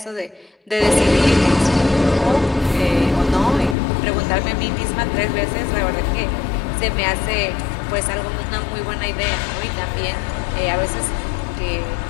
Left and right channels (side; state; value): right; drops out; at 3.8 s